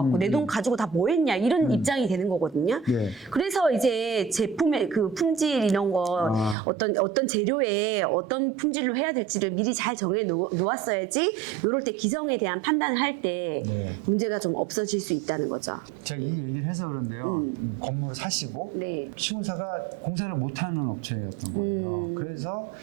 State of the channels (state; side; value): drops out; left; at 6.6 s